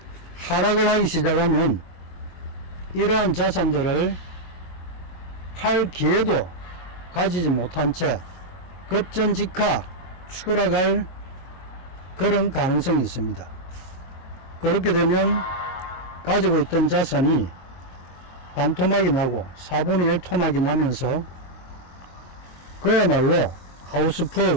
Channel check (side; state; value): right; late; 22 ms